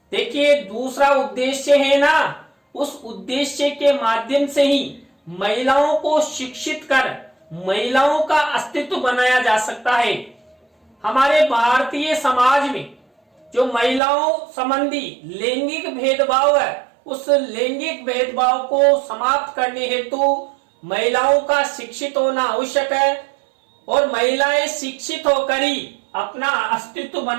देखिए, दूसरा उद्देश्य है ना, उस उद्देश्य के माध्यम से ही महिलाओं को शिक्षित कर महिलाओं का अस्तित्व बनाया जा सकता है। हमारे भारतीय समाज में जो महिलाओं संबंधी लैंगिक भेदभाव है, उस लैंगिक भेदभाव को समाप्त करने हेतु महिलाओं का शिक्षित होना आवश्यक है और महिलाएं शिक्षित होकर ही अपना अस्तित्व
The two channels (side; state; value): left; drops out; at 14.0 s